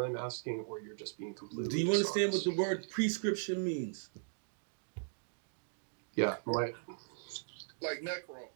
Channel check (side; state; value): left; silent; digital silence